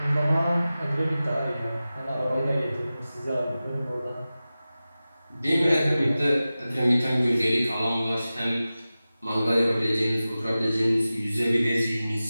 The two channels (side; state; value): both; inverted; correlation -0.95